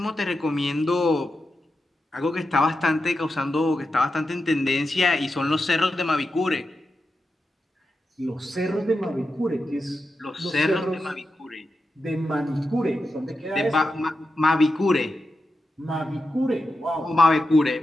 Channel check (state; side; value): normal; both; correlation 0.89